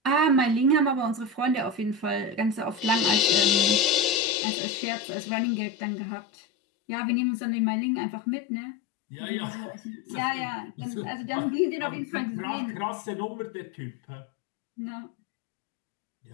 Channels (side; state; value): right; drops out; at 4.2 s